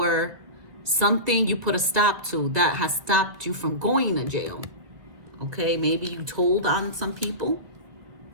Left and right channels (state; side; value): late; left; 1.9 ms